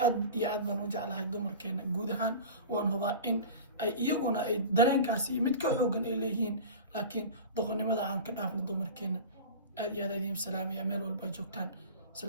aad iyo aad baan u jeclahay dumarkeena guud ahaan waan hubaa in ay iyaguna ay dareenkaasi mid ka xoogan ay leeyihiin laakiin doqonnimada aan ka dhaafno dumarkeena aad iyo aad idiin salaamaya meel walba joogtaan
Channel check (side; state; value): both; inverted; correlation -0.34